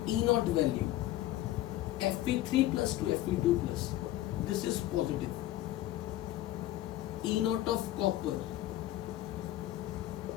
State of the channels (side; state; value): right; quieter; 14.7 dB